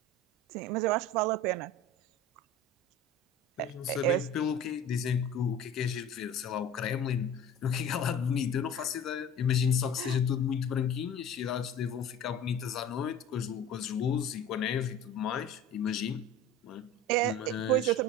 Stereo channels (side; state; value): both; normal; correlation 0.38